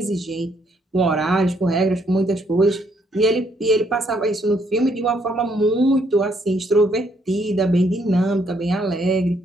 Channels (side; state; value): both; normal; correlation 0.71